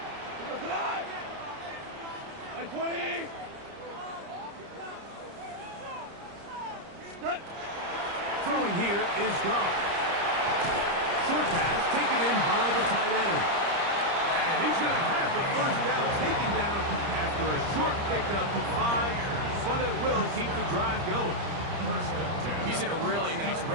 120. Cut. Throwing here is Goff. Short pass taken in by the tight end. And he's going to have the first down taken down after a short pickup of 5, but it will keep the drive going. He's in a really nice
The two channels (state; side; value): late; left; 30 ms